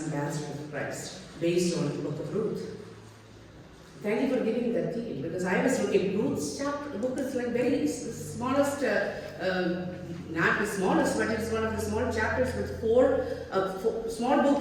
ambassadors of Christ, based on the book of Ruth. Thank you for giving that detail, because I was looking, Ruth's chapter book is like very smallest, not the smallest, but it's one of the small chapters with four small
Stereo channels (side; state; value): both; identical; correlation 1.00